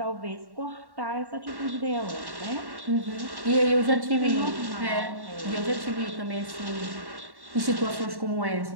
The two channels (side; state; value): left; late; 1.1 ms